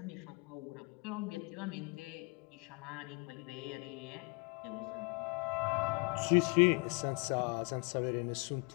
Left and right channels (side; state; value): right; quieter; 30.0 dB